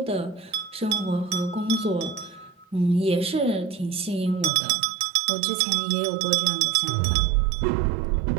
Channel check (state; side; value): drops out; left; at 4.5 s